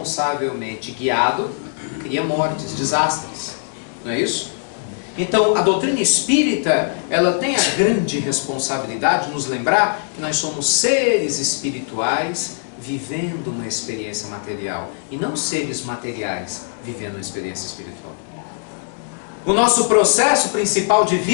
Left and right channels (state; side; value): silent; right; digital silence